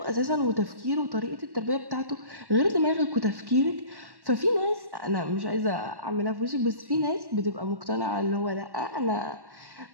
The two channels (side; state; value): left; late; 1.1 ms